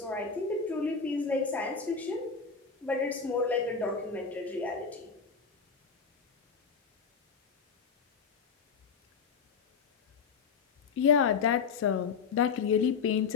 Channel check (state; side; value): quieter; right; 5.6 dB